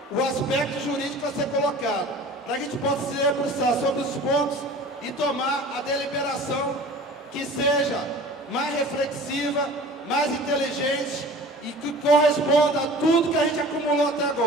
o aspecto jurídico a ser colocado, para que a gente possa se debruçar sobre os pontos e tomar a deliberação que seja mais reflexiva, mais inteligente e que corresponda a tudo que a gente acumulou até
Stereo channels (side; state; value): both; normal; correlation 0.42